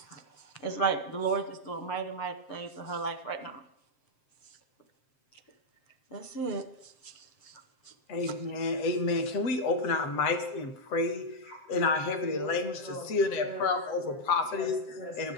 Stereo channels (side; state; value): right; late; 7.6 ms